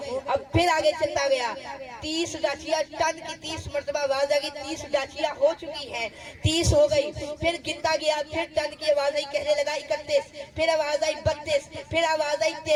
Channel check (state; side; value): identical; both; correlation 1.00